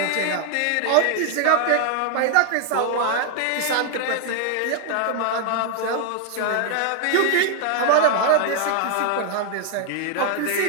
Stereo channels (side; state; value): both; different; correlation 0.00